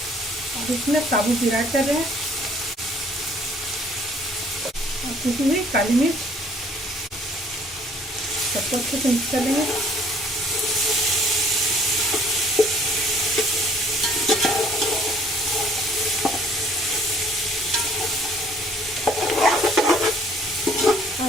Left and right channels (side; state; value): both; normal; correlation 0.59